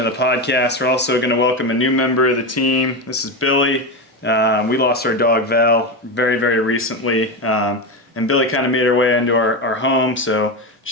the podcast. We're also going to welcome a new member of the team. This is Billy. We lost our dog, Val, very, very recently. And Billy kind of made her way into our home, so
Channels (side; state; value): both; normal; correlation 0.16